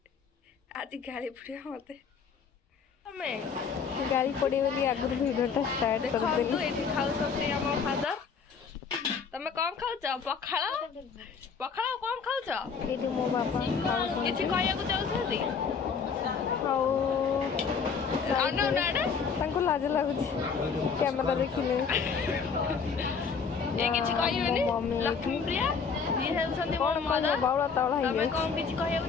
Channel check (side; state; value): right; quieter; 5.9 dB